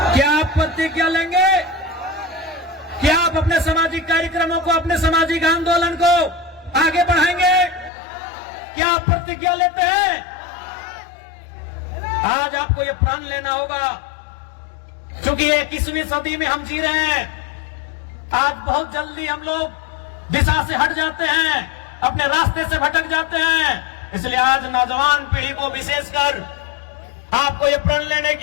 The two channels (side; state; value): right; drops out; at 7.9 s